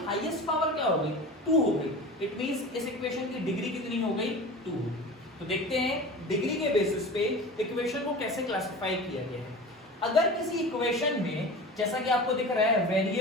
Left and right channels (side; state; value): both; normal; correlation 0.34